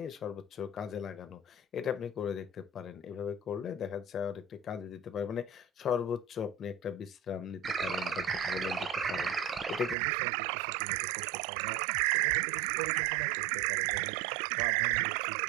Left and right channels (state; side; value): drops out; left; at 10.0 s